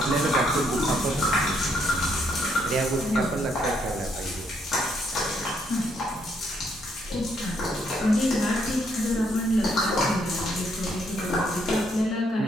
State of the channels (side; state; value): both; normal; correlation 0.72